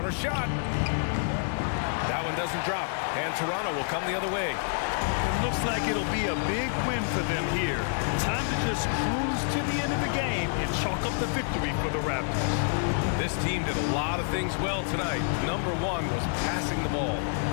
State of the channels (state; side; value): silent; right; 59 dB below the other